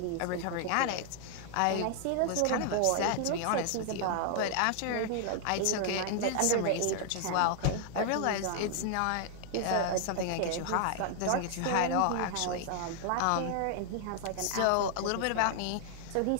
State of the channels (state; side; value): different; both; correlation 0.00